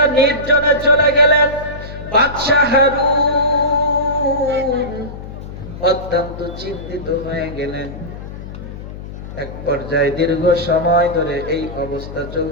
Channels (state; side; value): noise; left; hum, 11 dB below the sound